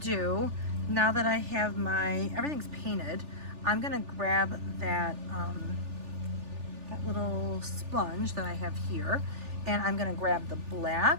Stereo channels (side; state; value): left; late; 3.4 ms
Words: now that I have everything's painted, I'm gonna grab that that little sponge that I have here, and I'm gonna grab the